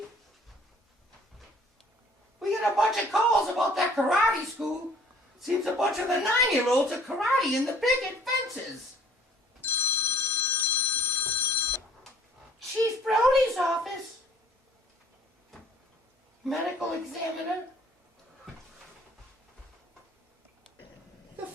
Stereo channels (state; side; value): normal; both; correlation 0.55